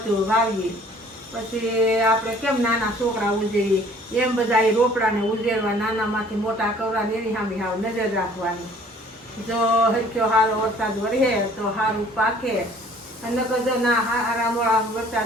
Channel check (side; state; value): both; normal; correlation 0.54